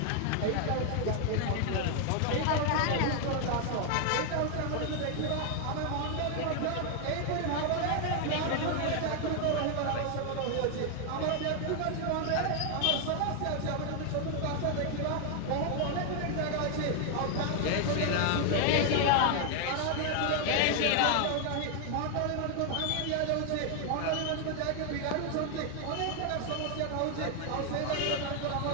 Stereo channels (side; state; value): both; different; correlation 0.00